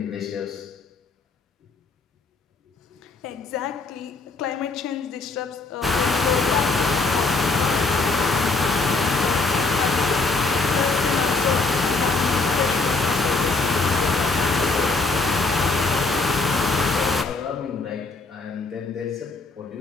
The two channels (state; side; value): quieter; right; 3.7 dB